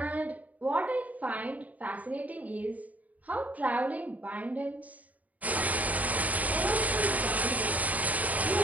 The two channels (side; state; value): left; late; 0.074 ms